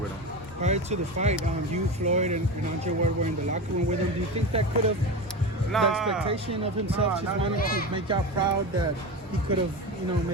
him. Prior to the fight, you, Floyd, and Andre were in the locker room with him. Do you think that could have the expectation of himself just wanting to make y'all proud that he could have, you know,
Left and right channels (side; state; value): both; normal; correlation 0.24